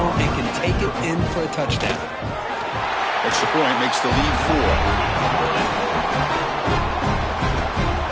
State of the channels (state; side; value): identical; both; correlation 1.00